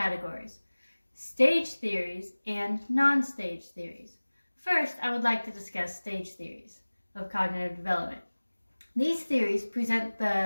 stage theories and non-stage theories. First, I would like to discuss stage theories of cognitive development. These theories present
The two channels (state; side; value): inverted; both; correlation -1.00